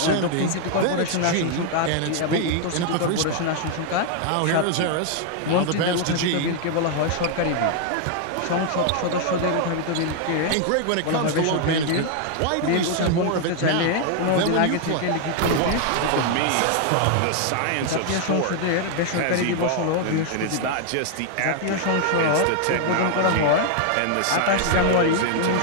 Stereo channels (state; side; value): different; both; correlation 0.00